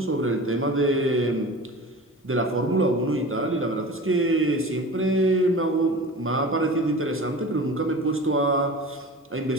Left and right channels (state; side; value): normal; both; correlation 0.36